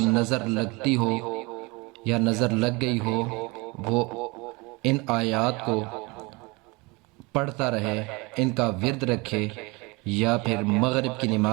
نظر لگتی ہو یا نظر لگ گئی ہو، وہ ان آیات کو پڑھتا رہے، ان کا ورد رکھے، یا پھر مغرب کی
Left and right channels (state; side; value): quieter; left; 26.1 dB